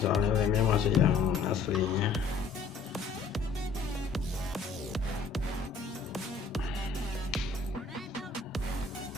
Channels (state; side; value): quieter; right; 4.8 dB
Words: soalnya remnya masih yang aslinya.